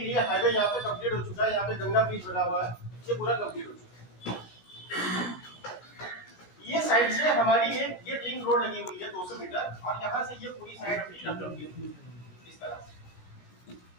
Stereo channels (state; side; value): late; right; 16 ms